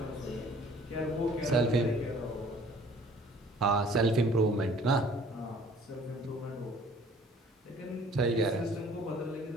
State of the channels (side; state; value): both; normal; correlation 0.53